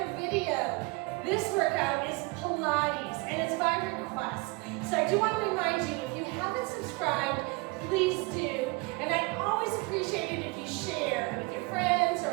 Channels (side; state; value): left; quieter; 27.0 dB